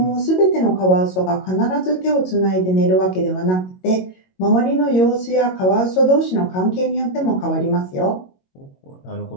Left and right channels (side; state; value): right; late; 22 ms